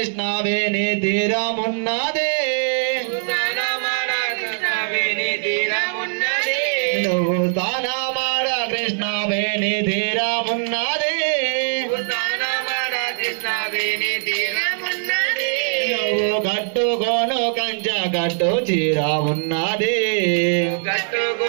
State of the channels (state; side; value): silent; left; digital silence